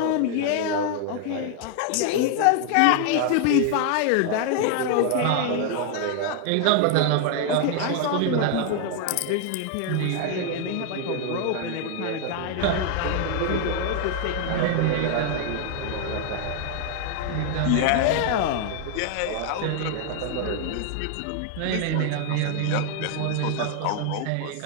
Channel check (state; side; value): different; both; correlation 0.00